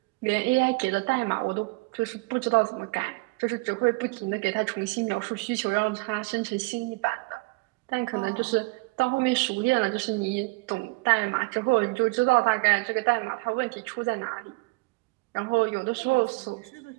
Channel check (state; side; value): quieter; left; 27.3 dB